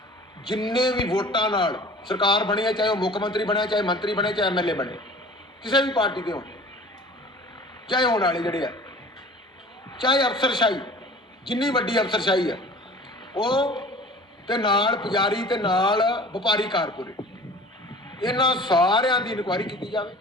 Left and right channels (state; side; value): normal; both; correlation 0.44